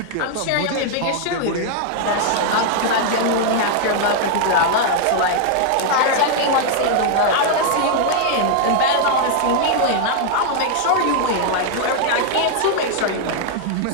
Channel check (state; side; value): different; both; correlation 0.00